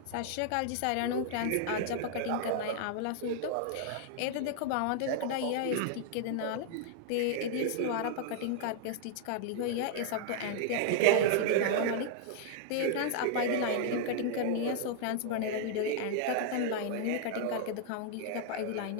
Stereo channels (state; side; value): different; both; correlation -0.01